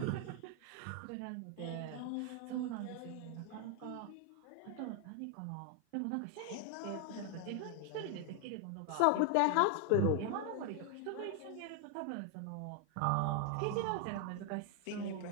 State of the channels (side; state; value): both; different; correlation 0.00